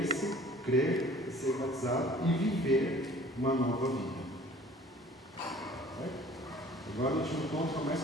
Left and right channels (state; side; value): normal; both; correlation 0.50